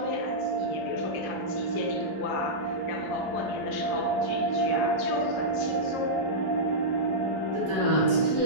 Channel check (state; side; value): normal; both; correlation -0.12